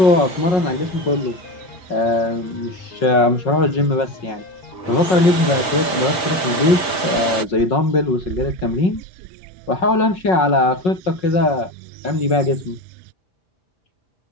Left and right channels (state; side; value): late; right; 5.4 ms